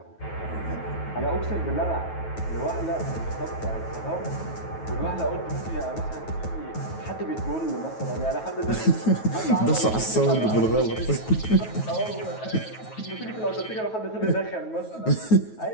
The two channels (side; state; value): right; late; 9.3 ms